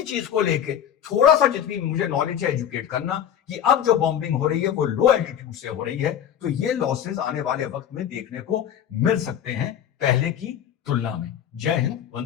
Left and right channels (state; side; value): quieter; right; 9.6 dB